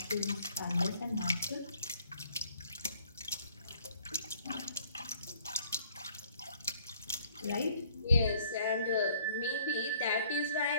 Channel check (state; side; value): inverted; both; correlation -0.61